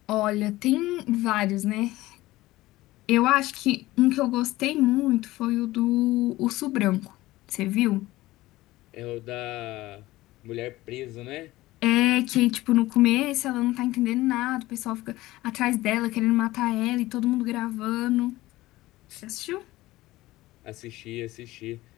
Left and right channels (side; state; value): right; quieter; 17.8 dB